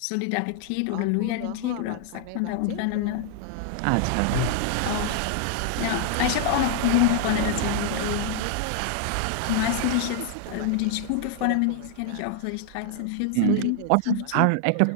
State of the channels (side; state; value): both; different; correlation 0.00